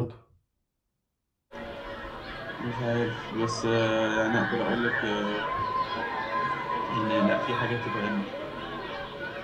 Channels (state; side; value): identical; both; correlation 1.00